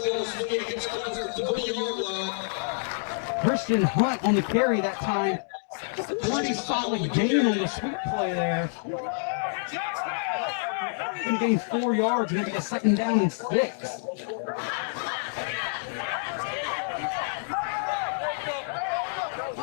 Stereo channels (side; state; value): right; silent; digital silence